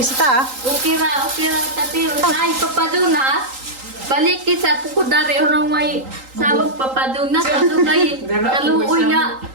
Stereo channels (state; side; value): late; left; 3.8 ms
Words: Ukira tatiri. Ay, papadunas. Balik sa pukudari orang may sabog papadunas. Ato kay kaluoy na.